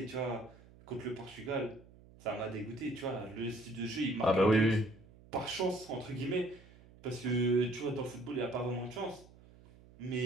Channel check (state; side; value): noise; right; hum, 23 dB below the sound